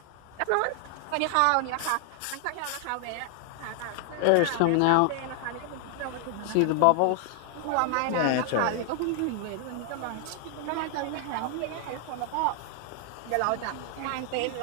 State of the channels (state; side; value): different; both; correlation 0.00